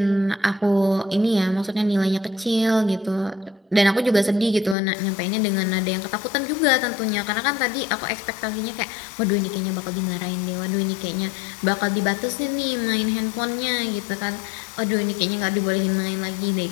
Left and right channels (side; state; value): right; drops out; at 4.8 s